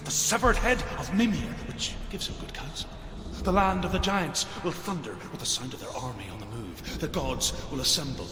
the severed head of Mimir, which gives him good counsel. The land of the giants will thunder with the sound of their army on the move. The gods will assemble.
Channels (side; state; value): both; identical; correlation 1.00